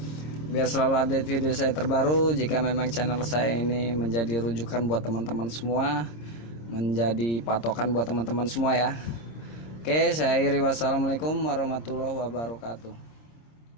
biar selalu update video saya terbaru. Jika memang channel saya ini menjadi rujukan buat teman-teman semua, menjadi patokan buat teman-teman semua ya. Oke, saya akhiri, wassalamualaikum warahmatullahi wabarakatuh.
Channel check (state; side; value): late; right; 26 ms